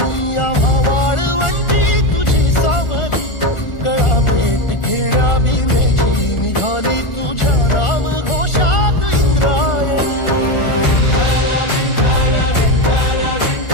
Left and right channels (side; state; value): right; late; 1.4 ms